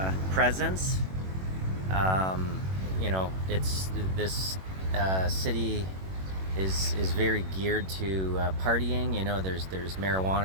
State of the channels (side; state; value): left; late; 21 ms